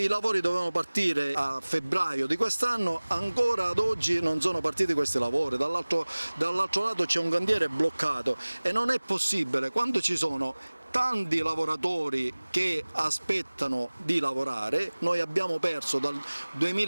dovevano partire a febbraio di quest'anno, ancora ad oggi non sono partiti questi lavori, dall'altro lato c'è un cantiere bloccato e non è possibile quando ci sono tanti lavoratori che aspettano di lavorare. Noi abbiamo perso dal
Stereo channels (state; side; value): inverted; both; correlation -1.00